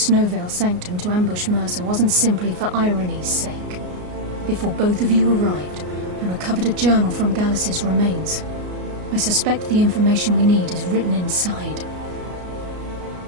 Sanctum to ambush Mercer wasn't simply for irony's sake. Before both of you arrived, I recovered a journal from Gallus's remains. I suspect the information we need is written inside.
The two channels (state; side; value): late; left; 33 ms